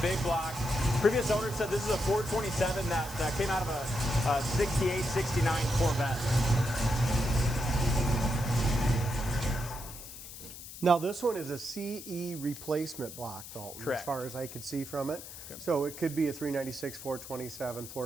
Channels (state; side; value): noise; left; hiss, 13 dB below the sound